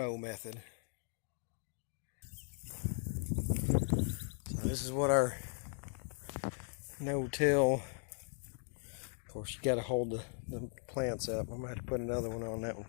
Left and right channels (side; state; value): right; silent; 52 dB below the other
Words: method. So this is what our no-till. Of course, you got to hold the plants up. I'm going to have to put another one on that one